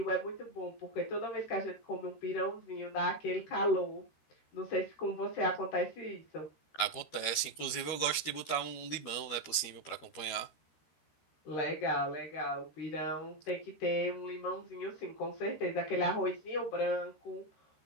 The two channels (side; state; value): right; late; 13 ms